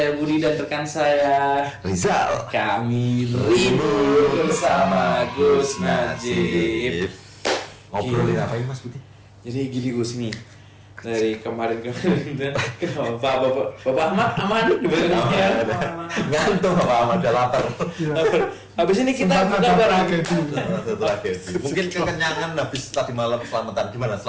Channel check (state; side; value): identical; both; correlation 1.00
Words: Budi dan rekan saya Rizal. Kami ribut bersama Gus Najib. Ngobrolin apa ini Mas Budi? Jadi gini Gus nih, dari kemarin dan Bapak Ahmad aman di belakangnya. Ngantuk Bapak Ahmad, udah lapar. Habis ini kita buka barang. Tragedi. Mungkin kekenyangan habis tadi malam selamatan. Gimana?